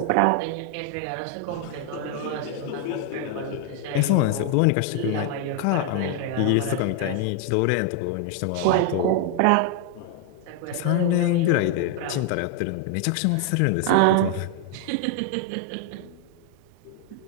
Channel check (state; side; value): different; both; correlation 0.00